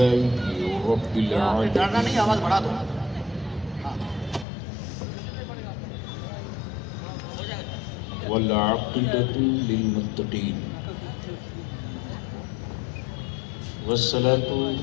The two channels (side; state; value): right; drops out; at 4.5 s